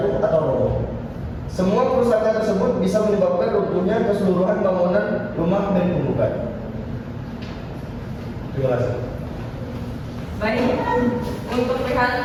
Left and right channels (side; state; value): both; identical; correlation 1.00